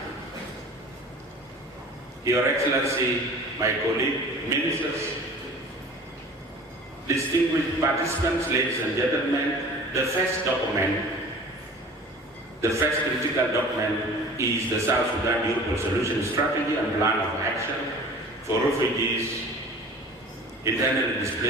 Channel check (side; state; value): both; normal; correlation 0.43